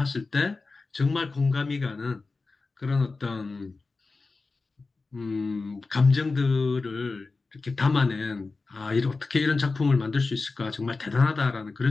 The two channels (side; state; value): right; quieter; 3.8 dB